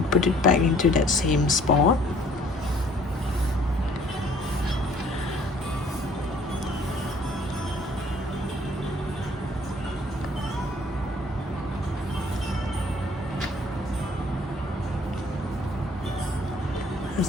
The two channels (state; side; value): normal; both; correlation 0.57